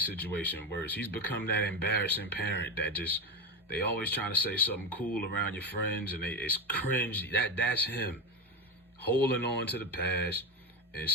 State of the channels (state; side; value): normal; both; correlation 0.16